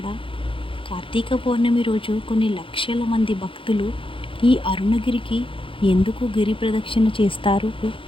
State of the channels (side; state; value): right; late; 0.25 ms